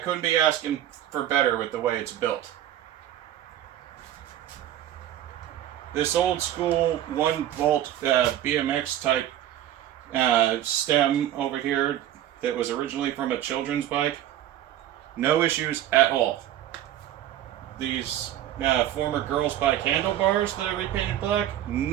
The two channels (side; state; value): left; quieter; 12.0 dB